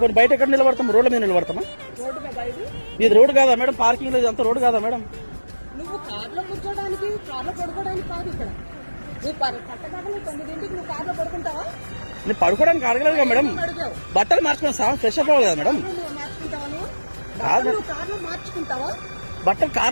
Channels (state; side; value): inverted; both; correlation -1.00